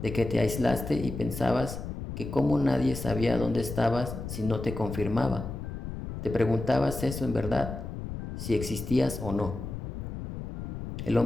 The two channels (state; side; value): noise; left; rumble, 7 dB below the sound